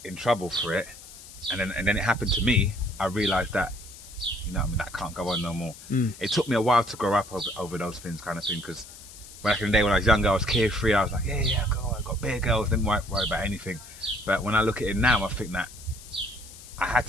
in trouble for it, and then it happened to me, I realised that, you know what I mean, that can't go on no more. It took me a while to grow up over those things, kind of thing, because back in the day when I was younger, I was carefree. I was like, yeah, go on, I got bare girls, didn't worry about anything. But when I look at it now, I think that I had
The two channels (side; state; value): left; noise; hiss, 17 dB below the sound